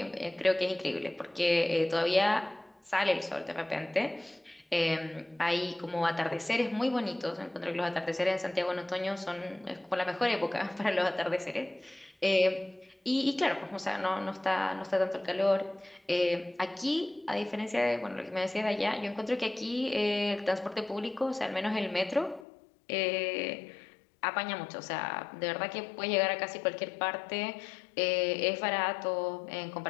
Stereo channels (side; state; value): right; drops out; at 22.5 s